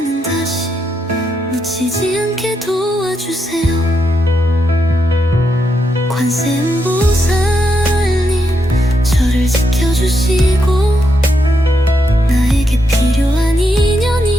다시 놓치지 않게 도와주세요. 관세음보살님, 저를 지켜주시고 나에게 필요한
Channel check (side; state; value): both; normal; correlation 0.81